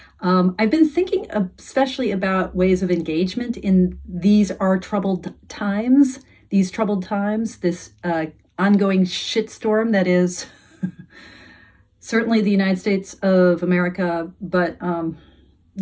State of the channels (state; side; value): identical; both; correlation 1.00